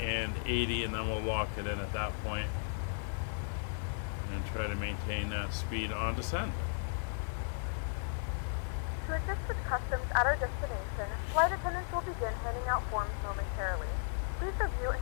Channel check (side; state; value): right; silent; 54 dB below the other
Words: and then we'll lock it in at that point and try to maintain that speed on descent. To assist with customs at our destination, flight attendants will begin handing out forms momentarily. Please review and